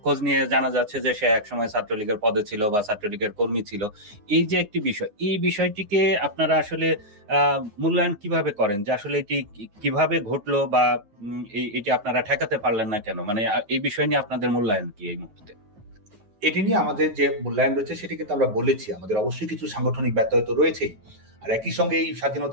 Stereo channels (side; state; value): left; late; 9.6 ms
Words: খোঁজ নিয়ে জানা যাচ্ছে যে সে একসময় ছাত্রলীগের পদে ছিল বা ছাত্রলীগের কর্মী ছিল। এই যে একটি বিষয়, এই বিষয়টিকে আপনারা আসলে মূল্যায়ন কিভাবে করেন, যে আসলে এটি কিভাবে ঘটলো, বা এটি আপনারা ঠেকাতে পারলেন না কেন? মানে এই বিষয় নিয়ে আপনাদের মূল্যায়ন কি এই মুহূর্তে? এটি নিয়ে আমাদের যে মূল্যায়ন রয়েছে সেটি কিন্তু আমরা বলেছি, আমাদের অবশ্যই কিছু সাংগঠনিক ব্যত্যয় তো রয়েছেই। আর একই সঙ্গে এই